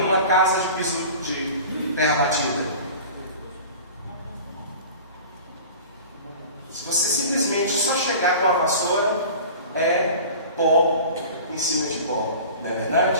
uma casa de piso de terra batida? Se você simplesmente só chegar com a vassoura, é pó em cima de pó, não é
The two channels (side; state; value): both; inverted; correlation -0.39